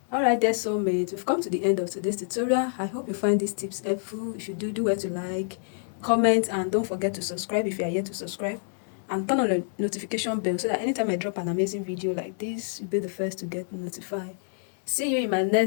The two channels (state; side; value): silent; right; digital silence